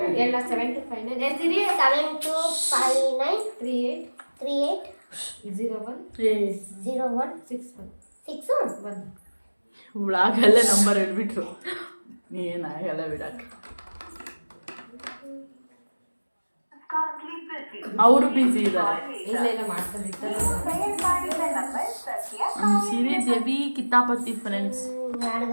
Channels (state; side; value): inverted; both; correlation -1.00